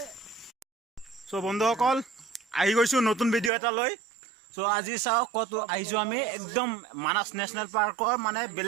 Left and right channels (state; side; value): drops out; left; at 3.5 s